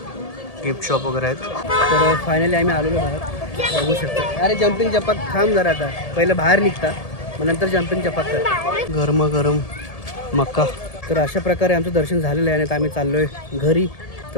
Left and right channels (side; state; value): right; late; 1.7 ms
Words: गिफ्ट शॉप वगैरे आहेत. तर फायनली आम्ही आलेलो बाहेर बघू शकतो. अरे जम्पिंग चपाक थांब जरा. आता पहिलं बाहेर निघता मग नंतर जम्पिंग चपाक कर. गरम मक्का. तर अशा प्रकारे आमचं दर्शन झालेलं आहे आणि आता आम्ही चाललो आहे घरी.